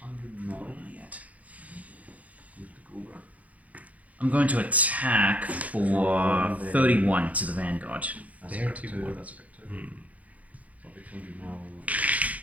mil. Yet. I'm going to attack for 31 to the Vanguard. That's There a bit too, too. more. That's a bit too. So it'll be 200 mil.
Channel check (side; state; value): left; late; 0.071 ms